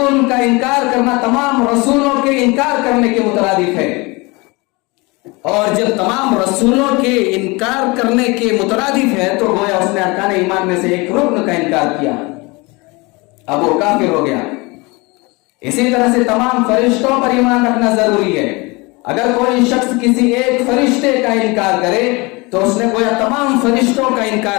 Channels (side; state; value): right; quieter; 25.7 dB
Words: کا انکار کرنا تمام رسولوں کے انکار کرنے کے مترادف ہے. اور جب تمام رسولوں کے انکار کرنے کے مترادف ہے تو گویا اس نے ارکان ایمان میں سے ایک رکن کا انکار کیا، اب وہ کافر ہو گیا. اسی طرح سے تمام فرشتوں پر ایمان رکھنا ضروری ہے. اگر کوئی شخص کسی ایک فرشتے کا انکار کرے تو اس نے گویا تمام فرشتوں کا